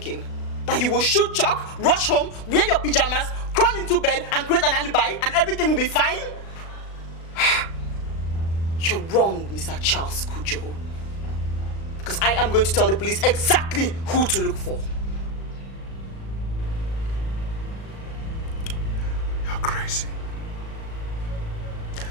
That you will shoot Chuck, rush home, wear your pajamas, crawl into bed and create an alibi and everything will be fine? You're wrong, Mr. Charles Kujo. Because I am going to tell the police exactly who to look for. You're crazy.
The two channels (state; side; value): late; right; 36 ms